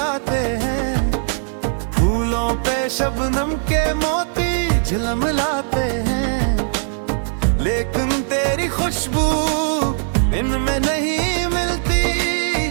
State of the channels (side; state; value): left; silent; 66 dB below the other